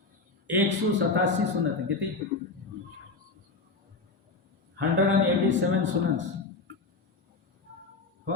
187 सुन्नतें, कितनी? 187 सुन्नत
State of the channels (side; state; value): right; quieter; 4.0 dB